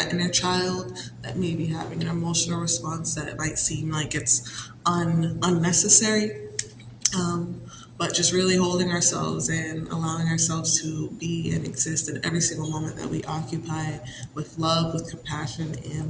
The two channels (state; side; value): identical; both; correlation 1.00